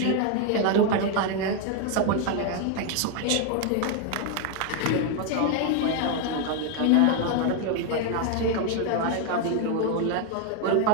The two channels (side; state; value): both; different; correlation 0.00